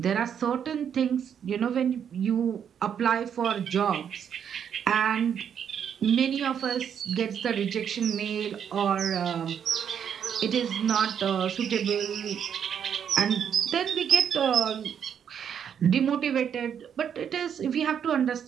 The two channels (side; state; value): left; quieter; 8.3 dB